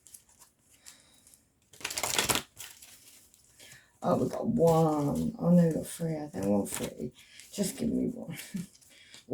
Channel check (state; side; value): identical; both; correlation 1.00